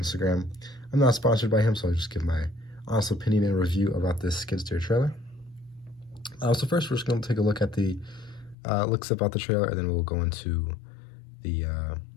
I'm not sponsored by him, so I'll just give my honest opinion and review about this Skidsteer trailer. So first, we're just going to take a look at the looks about the trailer, and then we'll go into the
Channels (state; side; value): drops out; right; at 8.6 s